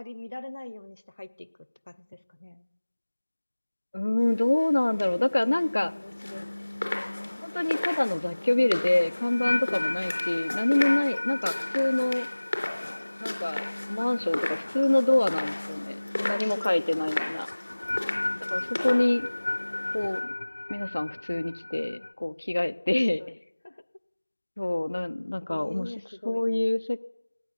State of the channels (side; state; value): both; inverted; correlation -1.00